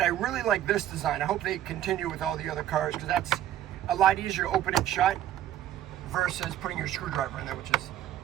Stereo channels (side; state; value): left; quieter; 11.9 dB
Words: I really like this design. I hope they continue with all the other cars because that's a lot easier to open and shut versus putting your screwdriver in there, which is